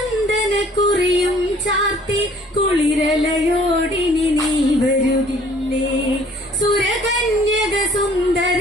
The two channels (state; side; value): normal; both; correlation 0.56